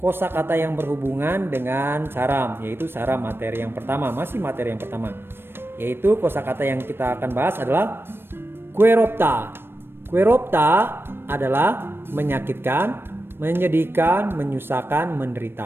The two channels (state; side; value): late; left; 0.11 ms